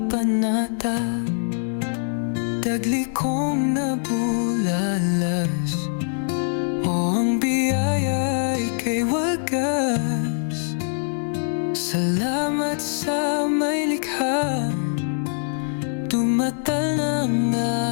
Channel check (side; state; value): right; silent; digital silence